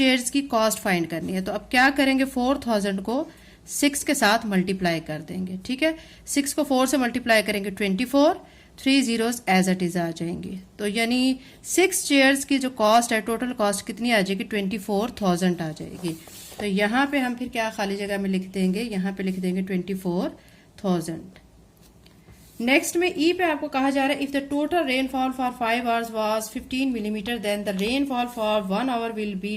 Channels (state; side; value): identical; both; correlation 1.00